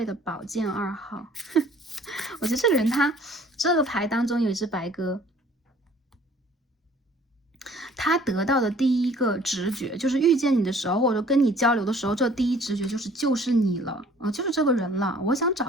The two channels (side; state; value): both; normal; correlation 0.54